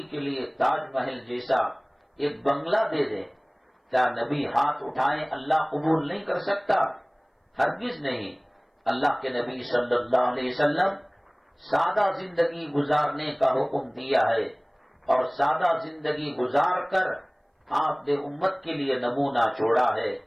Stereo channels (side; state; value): both; identical; correlation 1.00